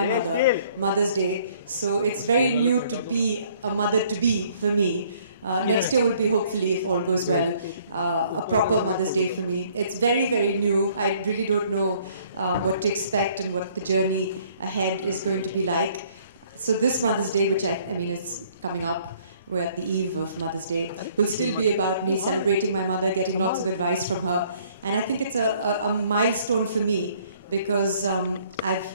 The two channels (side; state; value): both; inverted; correlation -0.61